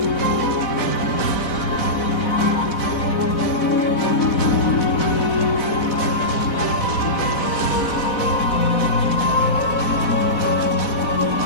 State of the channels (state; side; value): late; right; 4.1 ms